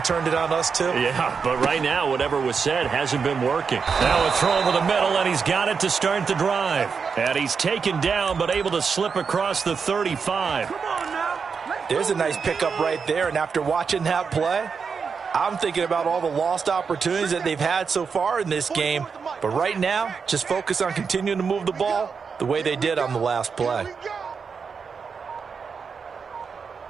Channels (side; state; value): left; quieter; 5.7 dB